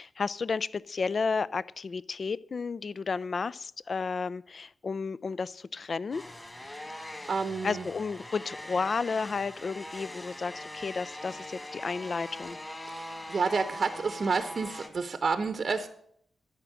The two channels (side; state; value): both; normal; correlation 0.88